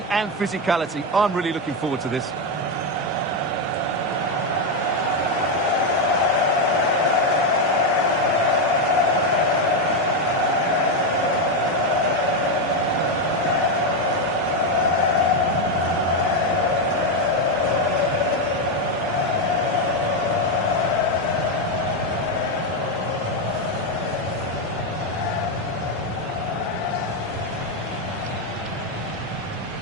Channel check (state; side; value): normal; both; correlation 0.06